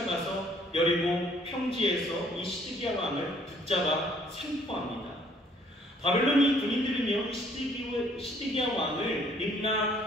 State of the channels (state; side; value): normal; both; correlation 0.62